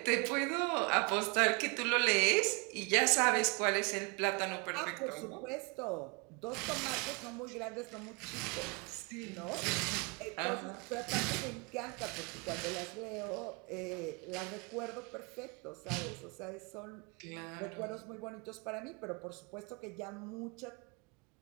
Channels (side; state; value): left; quieter; 30.8 dB